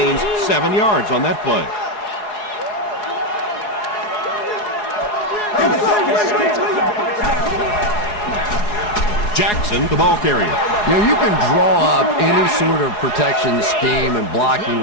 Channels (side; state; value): right; late; 4.8 ms